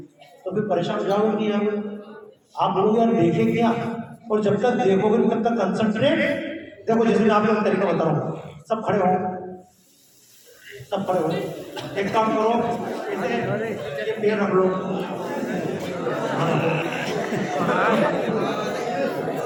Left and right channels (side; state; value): both; identical; correlation 1.00